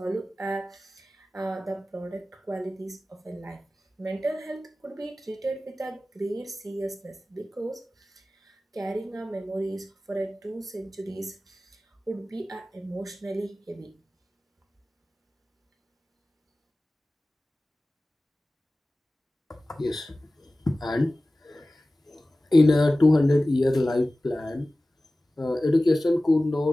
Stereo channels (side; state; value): both; normal; correlation 0.97